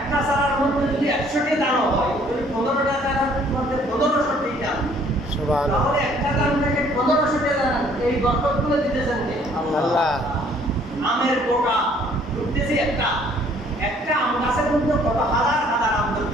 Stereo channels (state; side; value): normal; both; correlation 0.60